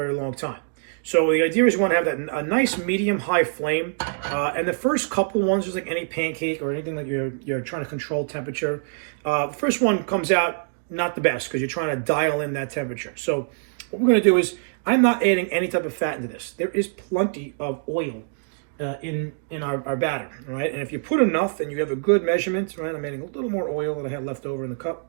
long time. So the idea is you want to have a nice medium-high flame. And the first couple ones, just like any pancake or anything that you're trying to control temperature, the first one comes out not the best because you're trying to dial in that temperature. So what we're going to do is, I'm not adding any type of fat into this. There is plenty of oil in our batter, right? And if you put enough and you have a good measurement, right? I'm adding a little more oil that I had left over in the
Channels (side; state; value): left; silent; digital silence